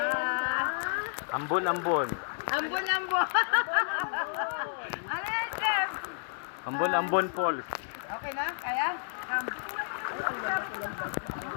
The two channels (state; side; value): silent; right; digital silence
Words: Ambon, ambon. Ambon. Ano yan, Chef? Ambon, ambon, Paul. Okay na? Kaya? Come.